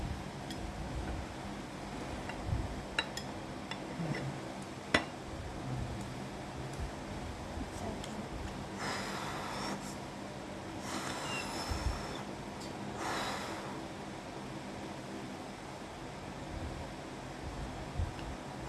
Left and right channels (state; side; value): identical; both; correlation 1.00